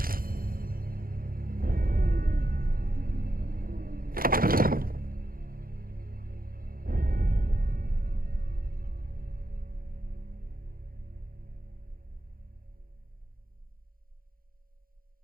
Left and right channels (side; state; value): left; late; 0.42 ms